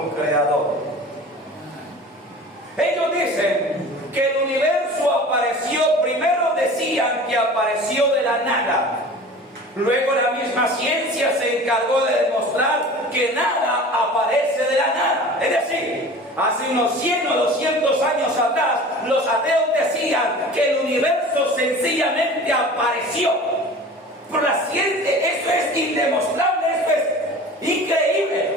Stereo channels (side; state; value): both; normal; correlation 0.40